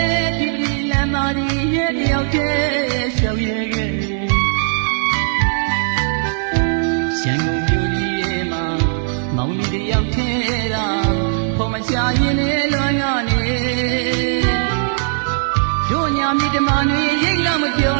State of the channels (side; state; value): left; silent; digital silence